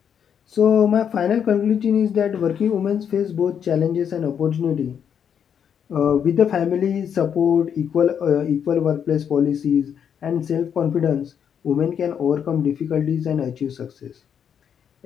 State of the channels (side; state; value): right; quieter; 8.1 dB